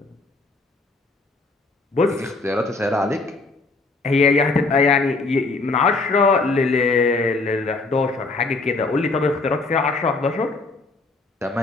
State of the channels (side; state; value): right; quieter; 3.6 dB